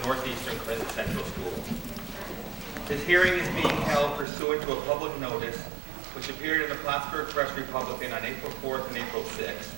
the Northeastern Clinton Central School. This hearing is being held pursuant to a public notice which appeared in the Plattsburgh Press Republican on April 4th and April 6th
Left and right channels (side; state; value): left; drops out; at 4.2 s